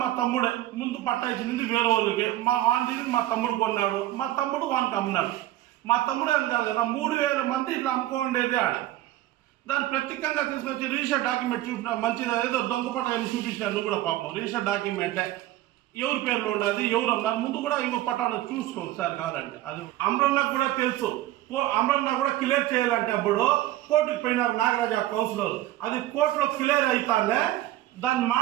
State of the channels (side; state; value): left; quieter; 15.0 dB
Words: మా తమ్ముడే. ముందు పట్టా ఇచ్చింది వేరే వాళ్ళకి, మా వాడిని మా తమ్ముడు కొన్నాడు, మా తమ్ముడు వానికి అమ్మినాడు. మా తమ్ముడే అని కాదు కదా, 3,000 మంది ఇట్లా అమ్ముకోండేది ఆడ. దాన్ని ప్రత్యేకంగా తీసుకొచ్చి రిజిస్టర్ డాక్యుమెంట్ చూపిన మంచిది, ఏదో దొంగపట్ట చూపించినారు. నువ్వు కూడా పాపం రిజిస్టర్ డాక్యుమెంటే ఎవరి పేర్లో ఉండదు, ఎవరు అన్నారు ముందు కూడా ఇంకో పట్టాను చూసుకో సార్ కావాలంటే. అది అమరన్నకు కూడా తెలుసు. అమరన్న కూడా క్లియర్ చేయాలంటే అప్పుడు కోర్టుకు పోయినారు నాగరాజు కౌన్సిలర్. అది కోర్టులో క్లియర్ అవుతానే దాన్ని